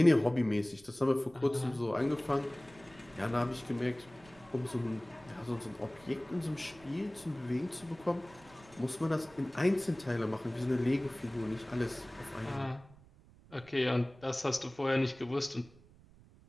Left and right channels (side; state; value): right; noise; rumble, 24 dB below the sound